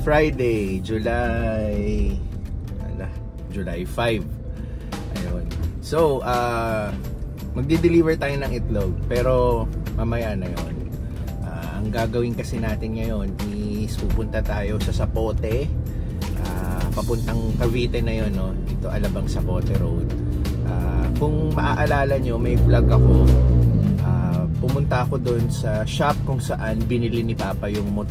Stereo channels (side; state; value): both; identical; correlation 1.00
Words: July 5. Ayun. So, magdi-deliver tayo ng itlog, pero mamaya na 'yon. Ang gagawin kasi natin ngayon is pupunta tayo sa Zapote, papuntang Cavite na 'yon, no? Dito Alabang Zapote Road. Kung maaalala nyo, may vlog ako. Pumunta ako doon sa shop kung saan binili ni Papa yung